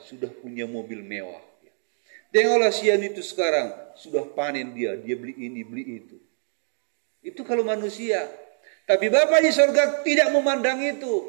punya mobil mewah. Tengoklah Sian itu sekarang sudah panen dia beli ini, beli itu. Itu kalau manusia. Tapi Bapa di surga tidak memandang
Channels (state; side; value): silent; left; digital silence